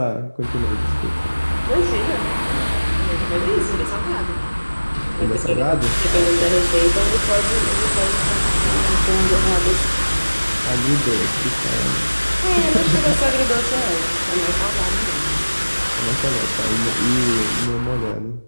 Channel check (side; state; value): both; inverted; correlation -1.00